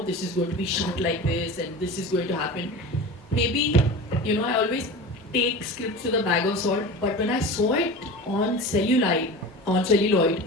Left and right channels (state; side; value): normal; both; correlation 0.32